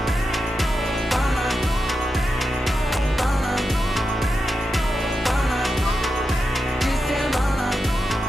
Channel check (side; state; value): both; normal; correlation 0.89